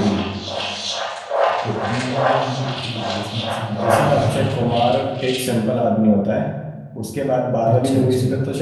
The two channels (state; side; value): identical; both; correlation 1.00